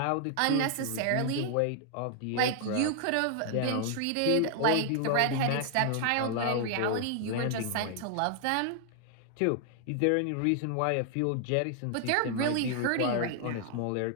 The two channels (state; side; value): different; both; correlation 0.00